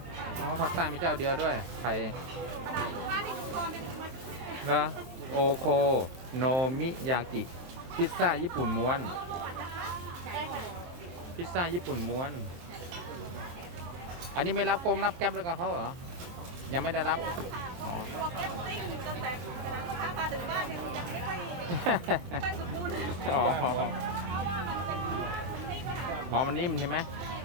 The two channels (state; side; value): late; left; 23 ms